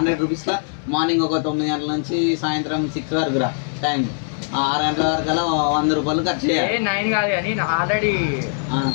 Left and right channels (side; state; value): right; silent; digital silence